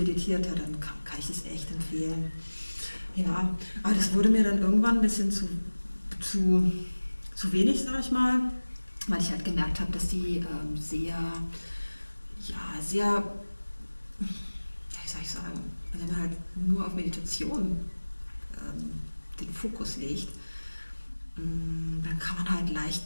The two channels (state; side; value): inverted; both; correlation -1.00